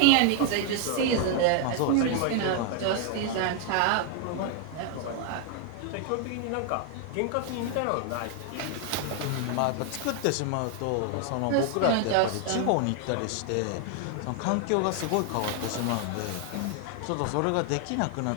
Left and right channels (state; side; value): different; both; correlation 0.00